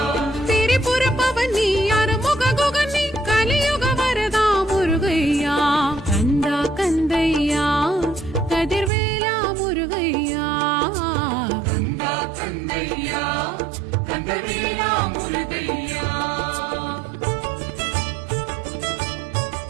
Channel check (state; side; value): drops out; left; at 8.9 s